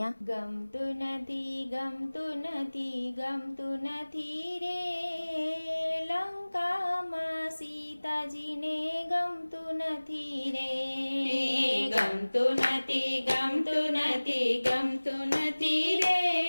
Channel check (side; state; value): both; inverted; correlation -1.00